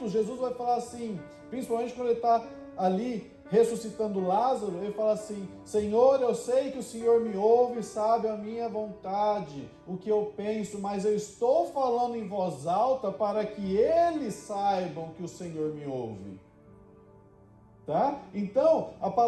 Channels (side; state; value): both; identical; correlation 1.00